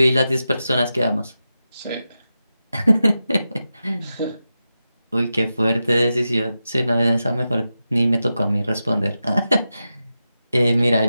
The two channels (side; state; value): both; inverted; correlation -0.91